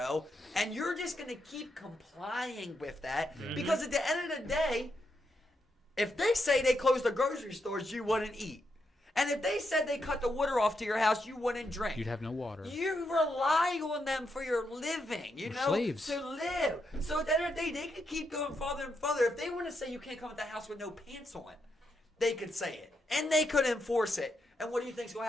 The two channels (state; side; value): normal; both; correlation 0.82